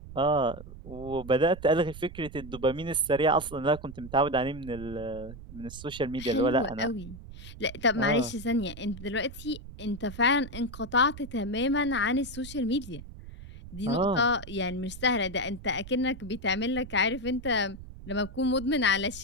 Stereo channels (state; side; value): noise; right; rumble, 14 dB below the sound